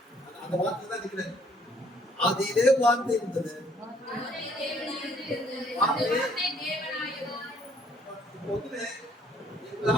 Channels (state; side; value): normal; both; correlation 0.63